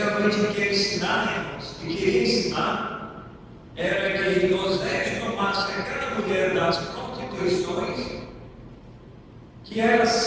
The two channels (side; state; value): both; identical; correlation 1.00